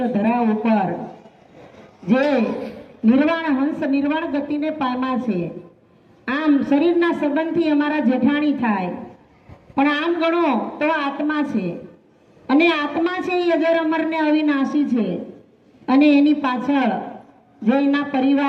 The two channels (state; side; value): identical; both; correlation 1.00